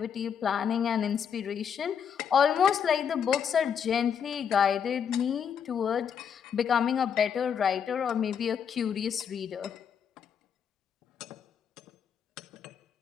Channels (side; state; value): right; quieter; 7.6 dB